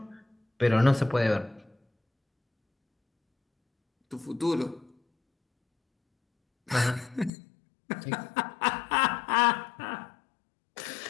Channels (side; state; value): right; drops out; at 7.3 s